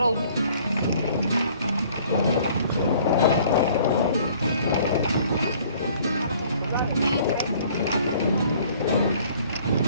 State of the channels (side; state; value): both; inverted; correlation -0.56